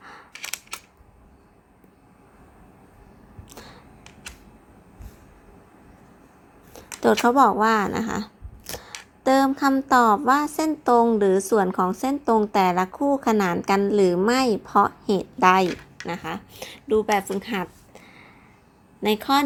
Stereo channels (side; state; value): both; identical; correlation 1.00